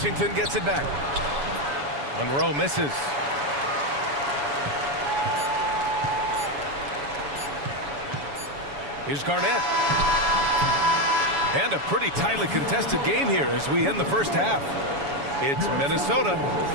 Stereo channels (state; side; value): late; left; 7.1 ms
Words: gets it back. Monroe misses. Here's Garnett. And a pretty tightly contested game here as we end the first half. It's Minnesota.